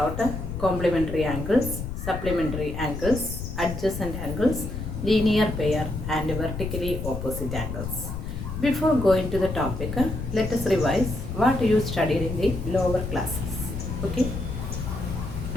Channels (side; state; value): left; noise; rumble, 6 dB below the sound